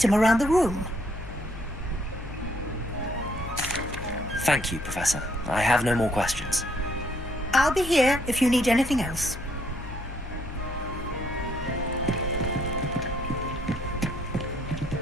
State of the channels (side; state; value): left; noise; hum, 11 dB below the sound